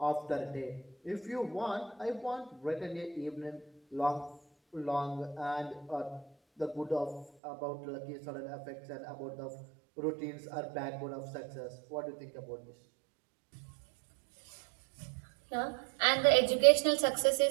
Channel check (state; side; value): drops out; left; at 7.2 s